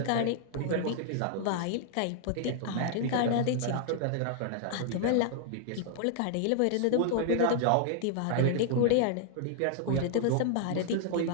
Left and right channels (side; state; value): both; different; correlation 0.00